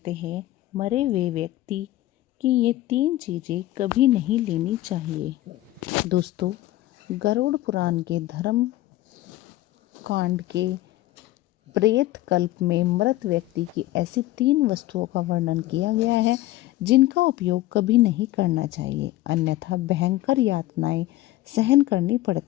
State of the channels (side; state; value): right; quieter; 16.1 dB